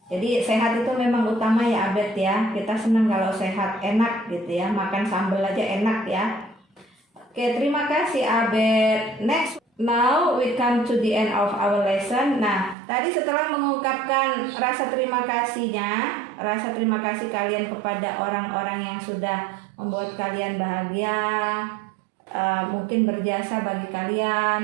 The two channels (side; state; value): left; drops out; at 12.8 s